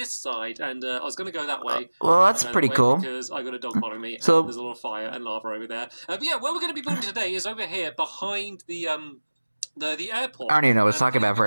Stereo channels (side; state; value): both; inverted; correlation -1.00